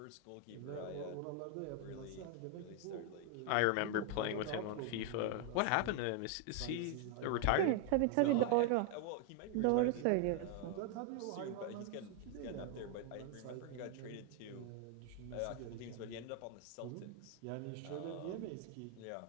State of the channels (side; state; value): both; different; correlation 0.00